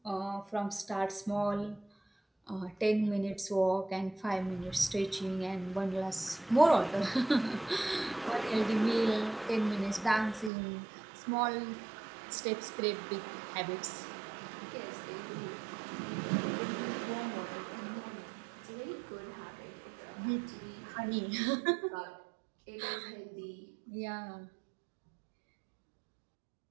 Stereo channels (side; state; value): left; drops out; at 10.5 s